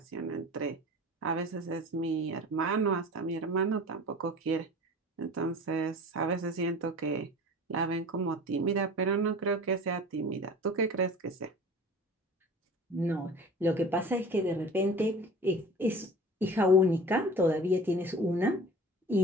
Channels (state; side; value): normal; both; correlation 0.40